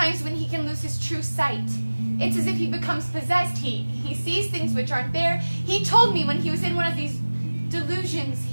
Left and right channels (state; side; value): inverted; both; correlation -1.00